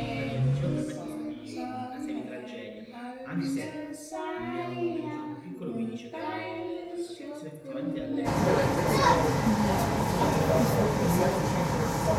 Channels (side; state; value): both; identical; correlation 1.00